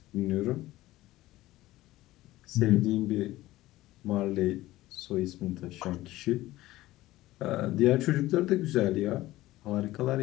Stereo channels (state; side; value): quieter; right; 16.9 dB